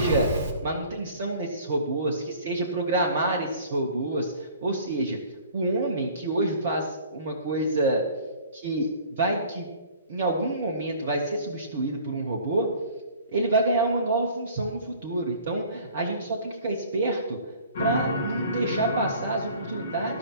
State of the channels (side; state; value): both; inverted; correlation -0.49